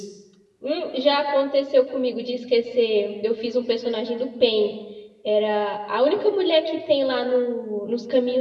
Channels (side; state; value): both; identical; correlation 1.00